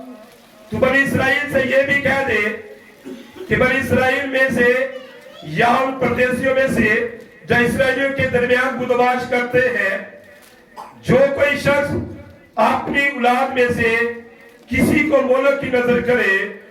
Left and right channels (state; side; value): identical; both; correlation 1.00